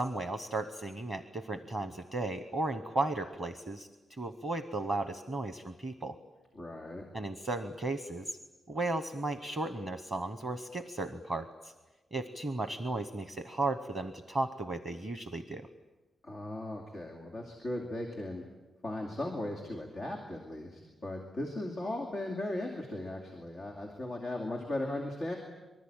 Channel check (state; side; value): normal; both; correlation 0.80